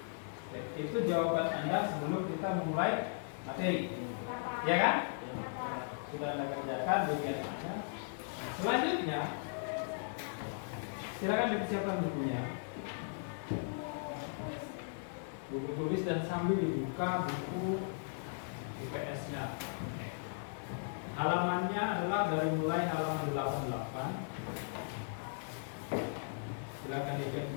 Itu jawaban Anda sebelum kita memulai materi, ya kan? Sudah Anda kerjakan bagian Anda. Selanjutnya, silakan dipersiapkan bukunya. Buku tulis dan sambil dibuka buku IPS-nya. Halamannya adalah dari mulai halaman 88. Silakan dicek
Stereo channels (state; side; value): silent; right; 53 dB below the other